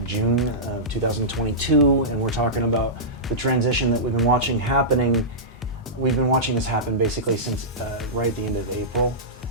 June of 2022, and we're talking about the transition that we've been watching happening. We've been watching this happen basically since right at the end of April,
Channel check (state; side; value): normal; both; correlation -0.16